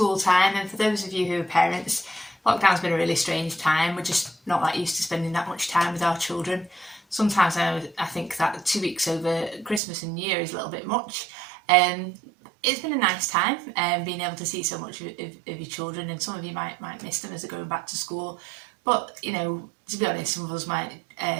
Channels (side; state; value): left; drops out; at 9.8 s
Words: time, and for those of you who are parents, lockdown's been a really strange time. We're just not that used to spending that much time with our children. Sometimes I think that 2 weeks over Christmas and New Year is a little bit much. It's been a nice time being able to see so much of your children, and some of you might miss them as they're going back to school. But, you know, to be honest, some of us might